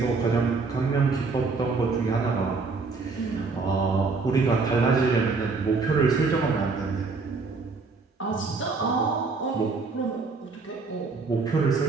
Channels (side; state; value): left; quieter; 4.3 dB